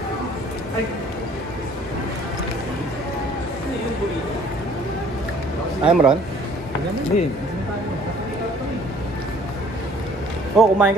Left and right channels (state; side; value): normal; both; correlation 0.55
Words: I'm Ron. Hindi. Oh, kumain